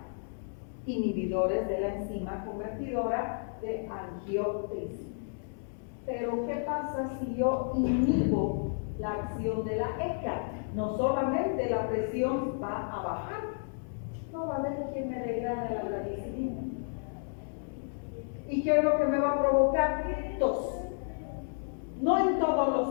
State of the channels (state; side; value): silent; right; digital silence